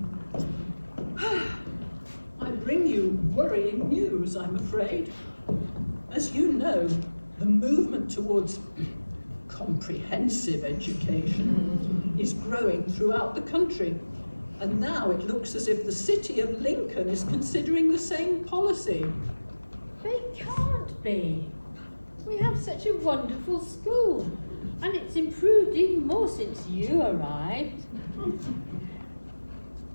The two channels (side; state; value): both; inverted; correlation -1.00